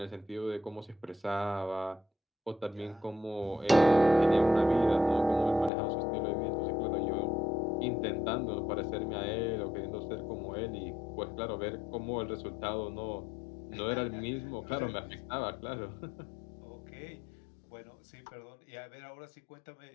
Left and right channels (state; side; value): drops out; right; at 5.7 s